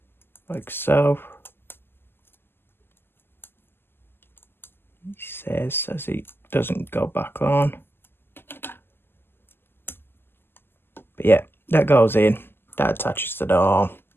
like so. He says as he doesn't go back on. But yeah, that goes in, that attaches to the arm,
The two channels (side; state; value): right; late; 0.11 ms